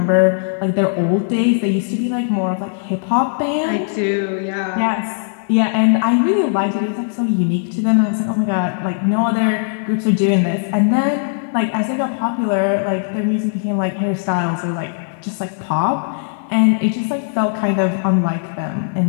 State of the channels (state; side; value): silent; right; 61 dB below the other